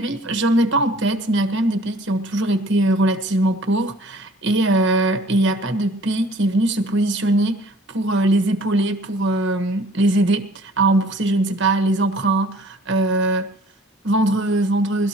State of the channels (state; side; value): normal; both; correlation 0.52